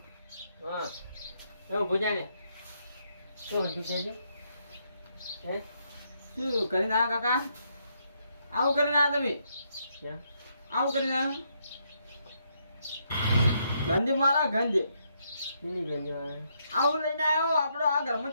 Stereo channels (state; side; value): inverted; both; correlation -0.76